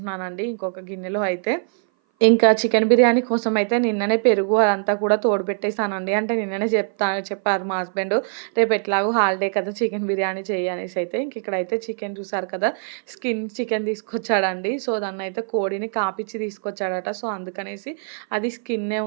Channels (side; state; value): left; silent; 58 dB below the other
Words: ఇంకొక గిన్నెలో అయితే. ఇంకా చికెన్ బిర్యానీ కోసం అయితే నిన్ననే పెరుగు అదంతా కూడా తోడుపెట్టేసానండి. అంటే నిన్ననే చెప్పారు మా హస్బెండు. రేపు ఎట్లాగో హాలిడే కదా! చికెన్ బిర్యానీ చెయ్యి అనేసి అయితే. ఇక్కడైతే చికెన్ చూసారు కదా! స్కిన్ చికెన్ తీసుకొచ్చాడండి. సో, దాన్నైతే కోడిని కాపిచ్చి తీసుకొచ్చాడట. సో, అందుకనేసి అది స్కిన్నే